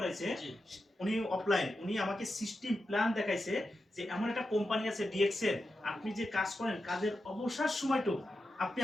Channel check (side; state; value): both; normal; correlation 0.89